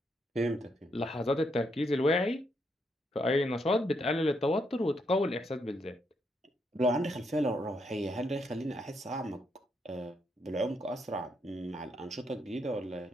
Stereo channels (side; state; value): both; normal; correlation 0.77